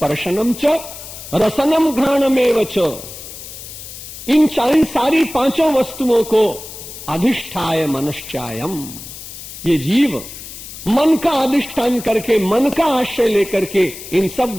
च रसनम घ्राणमेव च। इन सारी पांचों वस्तुओं को अधिष्ठाय मनश्चायम, ये जीव मन का अधिष्ठान करके, मन का आश्रय लेकर के इन सब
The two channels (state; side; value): noise; left; hiss, 13 dB below the sound